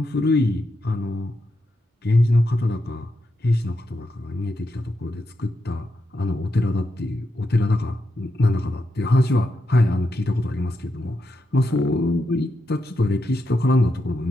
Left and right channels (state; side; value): normal; both; correlation 0.84